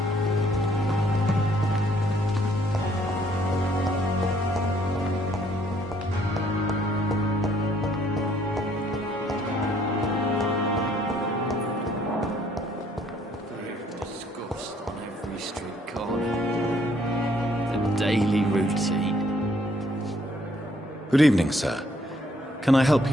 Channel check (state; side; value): normal; both; correlation 0.65